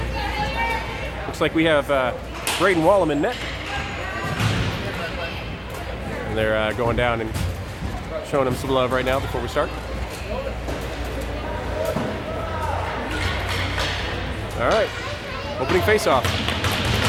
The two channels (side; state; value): both; identical; correlation 1.00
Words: Looks like we have Braden Wallem in net. And they're going down and showing him some love right now before we start. All right, opening face-off.